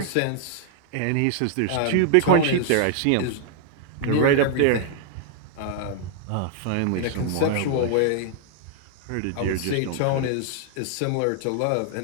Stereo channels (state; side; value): different; both; correlation -0.01